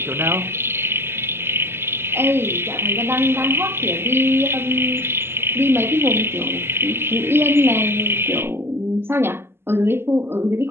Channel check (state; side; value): late; left; 0.12 ms